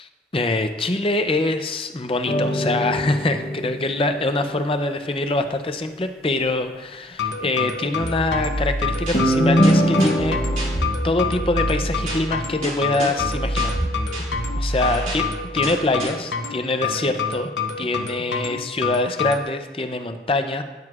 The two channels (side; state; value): both; normal; correlation 0.56